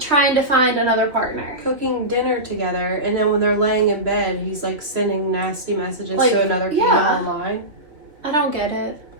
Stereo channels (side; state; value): left; late; 2.9 ms